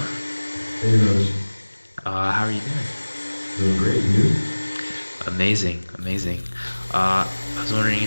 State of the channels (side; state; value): both; inverted; correlation -1.00